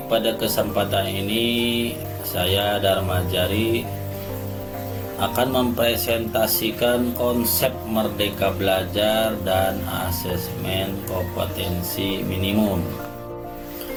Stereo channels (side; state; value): both; identical; correlation 1.00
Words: pada kesempatan ini saya Dharma Jari akan mempresentasikan konsep Merdeka Belajar dan asesmen kompetensi minimum.